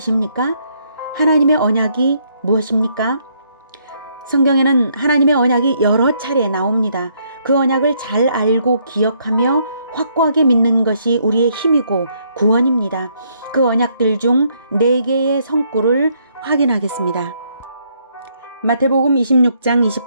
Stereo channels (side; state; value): both; inverted; correlation -0.71